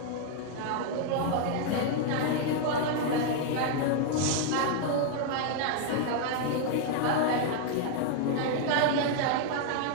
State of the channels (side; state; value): both; different; correlation 0.00